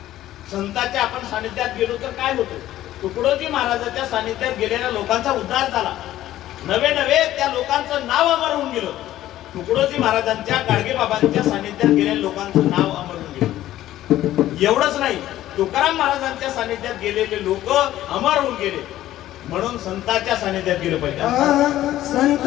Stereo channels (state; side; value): quieter; right; 13.8 dB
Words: संतांच्या आपण सानिध्यात गेलो तर काय होतं? तुकडोजी महाराजांच्या सानिध्यात गेलेल्या लोकांचा उद्धार झाला. नवे नवे त्या लोकांचं नाव अमर होऊन गेलं. तुकडोजी महाराजांच्या गाडगे बाबांच्या सानिध्यात गेलेल्या लोकांचं नाव अमर होऊन गेलं. एवढंच नाही, तुकाराम महाराजांच्या सानिध्यात गेलेले लोक अमर होऊन गेले. म्हणून संतांच्या सानिध्यात गेलं पाहिजे.